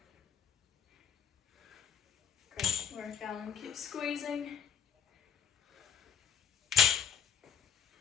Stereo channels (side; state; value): right; quieter; 8.2 dB